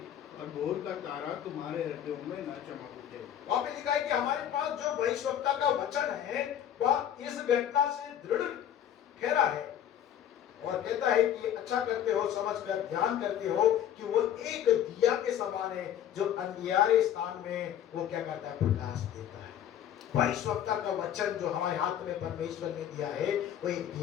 और भोर का तारा तुम्हारे हृदयों में न चमक उठे। वहां पे लिखा है कि हमारे पास जो भविष्यवक्ता का वचन है वह इस घटना से दृढ़ ठहरा है और कहता है कि अच्छा करते हो, समझकर ध्यान करते हो कि वो एक दिया के समान है जो अंधियारे स्थान में वो क्या करता है, प्रकाश देता है। भविष्यवक्ता का वचन जो हमारे हाथ में परमेश्वर ने दिया है वो एक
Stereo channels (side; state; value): right; quieter; 10.3 dB